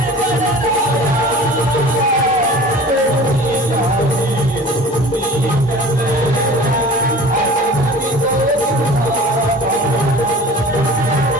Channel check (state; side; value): normal; both; correlation 0.42